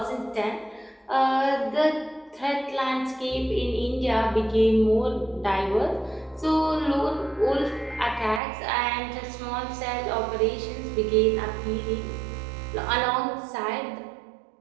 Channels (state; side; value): drops out; left; at 8.4 s